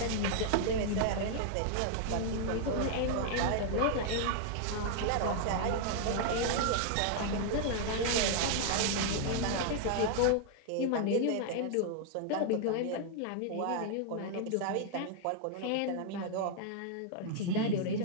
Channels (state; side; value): different; both; correlation 0.00